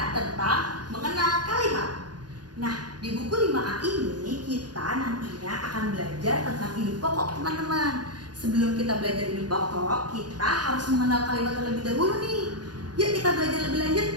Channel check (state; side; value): late; left; 0.69 ms